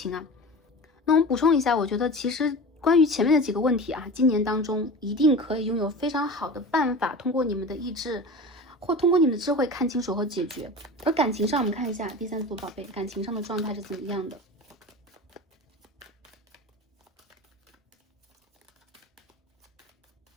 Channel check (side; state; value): both; normal; correlation 0.33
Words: 啊，那我们补充一下，我觉得其实关于前面的几个问题啊，今年当中一定可以拥有非常好的办法，通过你们的意志或通过你们的智慧看清楚和解决。而感情上，我们看一下第三组宝贝感情上的状态是怎么样的。